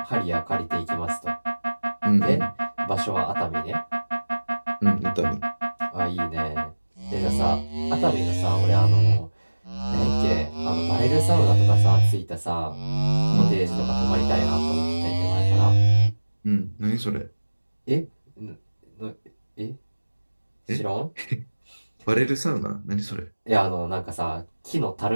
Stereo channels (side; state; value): both; inverted; correlation -1.00